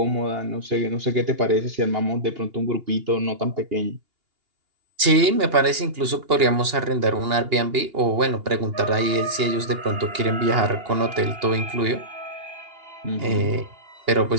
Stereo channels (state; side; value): late; left; 2.8 ms